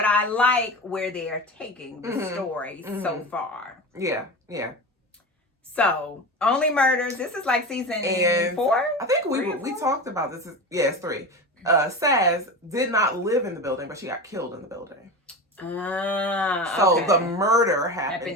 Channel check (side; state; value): both; normal; correlation 0.26